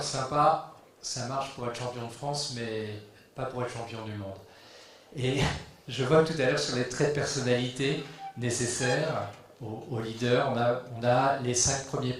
sympa, ça marche pour être champion de France, mais pas pour être champion du monde. Et je vois tout à l'heure sur les traits de personnalité nécessaires aux leaders, on a les 5 premiers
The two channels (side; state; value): both; identical; correlation 1.00